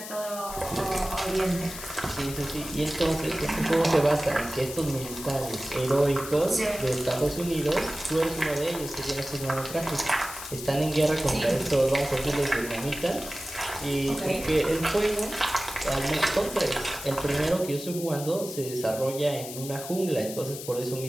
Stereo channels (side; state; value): left; noise; hiss, 10 dB below the sound